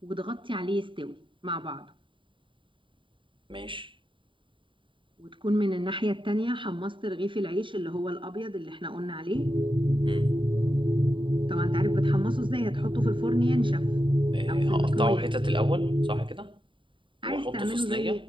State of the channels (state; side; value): late; left; 0.24 ms